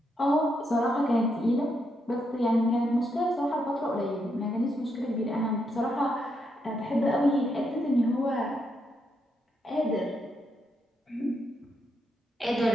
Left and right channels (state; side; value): normal; both; correlation 0.80